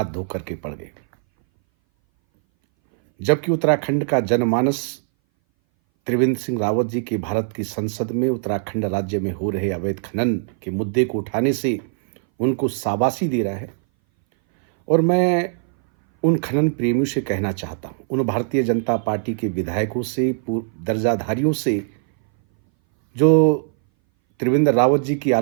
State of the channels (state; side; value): silent; left; 60 dB below the other